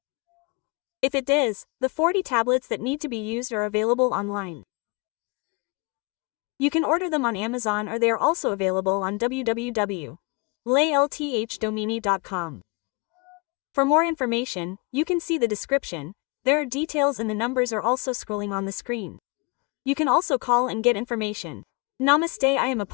If it does, the 40 tablets that need to be used are available online. You can order them on Amazon, or they are also available on www.laylthdomini.com. For more information, you can see the description. There are details and the numbers are also scrolling on the screen. You can also call and get information. Namaste, I am a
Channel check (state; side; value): quieter; right; 30.8 dB